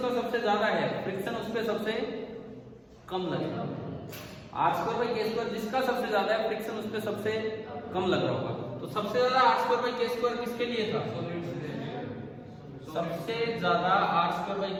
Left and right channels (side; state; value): both; identical; correlation 1.00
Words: सबसे ज्यादा है फ्रिक्शन उस पे सबसे कम लगेगा, r²/k² जिसका सबसे ज्यादा है फ्रिक्शन उस पे सबसे कम लग रहा होगा। तो सबसे ज्यादा r²/k² किसके लिए था? सबसे ज्यादा